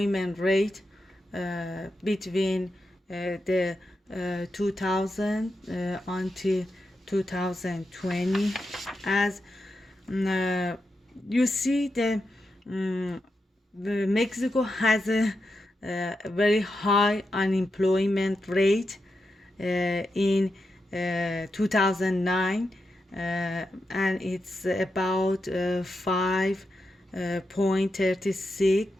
rate between the 2000 until 2020. As you see, the Mexico has a very high unemployment rate in 2009, and it's about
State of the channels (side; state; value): both; normal; correlation 0.87